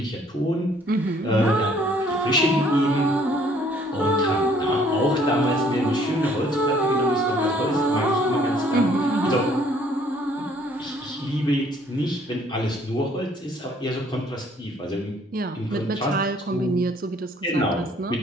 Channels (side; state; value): both; normal; correlation 0.61